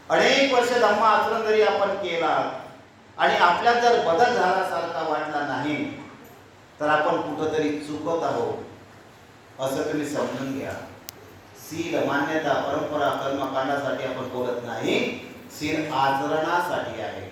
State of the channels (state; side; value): identical; both; correlation 1.00